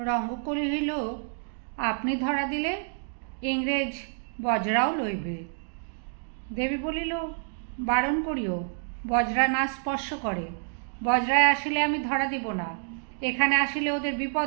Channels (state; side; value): silent; left; digital silence